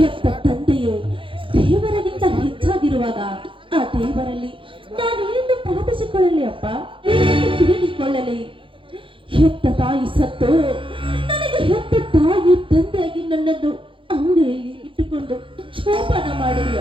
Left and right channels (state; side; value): late; left; 0.25 ms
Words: ತಂದೆಯು ದೇವರಿಗಿಂತ ಹೆಚ್ಚಾಗಿರುವಾಗ ಆ ದೇವರಲ್ಲಿ ನಾನು ಏನು ಪ್ರಾರ್ಥಿಸಿಕೊಳ್ಳಲಿ ಅಪ್ಪ, ಏನು ತಿಳಿದುಕೊಳ್ಳಲಿ? ಹೆತ್ತ ತಾಯಿ ಸತ್ತು ನನಗೆ ಹೆತ್ತ ತಾಯಿ ತಂದೆಯಾಗಿ ನನ್ನನ್ನು ಅಂಗಡಿಯಲ್ಲಿ ಇಟ್ಟುಕೊಂಡು ಶೋಭನ ಮಾಡಿದೆ